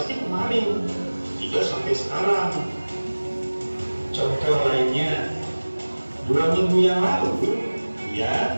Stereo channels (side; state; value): both; inverted; correlation -1.00